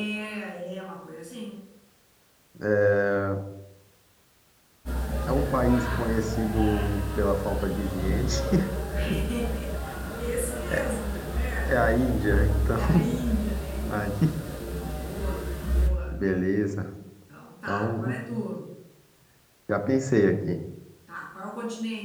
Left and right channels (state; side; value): identical; both; correlation 1.00